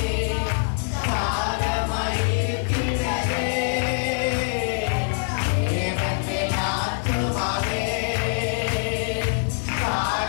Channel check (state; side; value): silent; right; digital silence